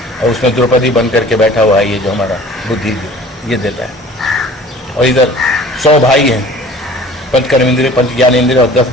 और उसमें द्रौपदी बन करके बैठा हुआ है ये जो हमारा बुद्धि ये देता है। और इधर 100 भाई हैं, पंच कर्म इंद्रिय, पंच ज्ञान इंद्रिय, और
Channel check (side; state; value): both; normal; correlation 0.47